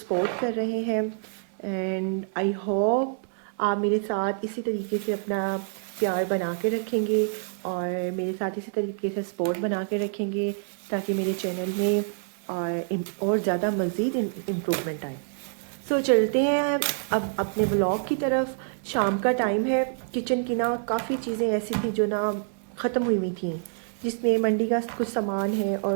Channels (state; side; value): silent; left; digital silence